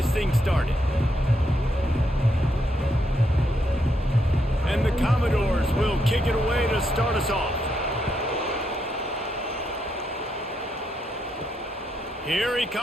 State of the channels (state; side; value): normal; both; correlation 0.79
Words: thing started. And the Commodores will kick it away to start us off. Here he